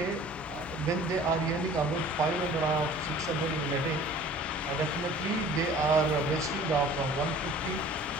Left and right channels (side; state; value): both; normal; correlation 0.48